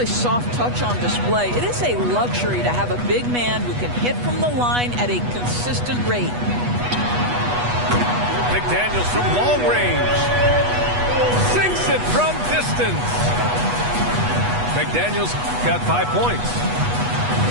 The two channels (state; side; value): late; left; 8.2 ms